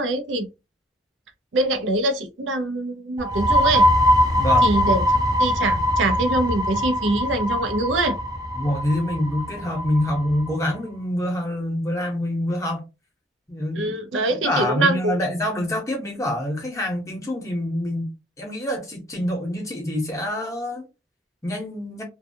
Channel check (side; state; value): both; normal; correlation 0.62